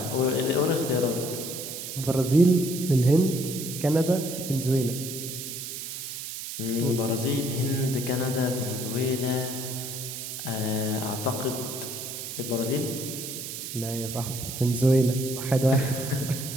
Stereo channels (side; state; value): right; noise; hiss, 7 dB below the sound